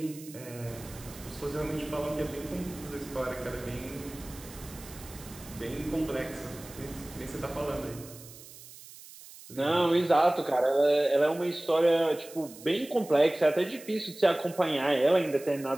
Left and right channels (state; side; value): noise; right; hiss, 18 dB below the sound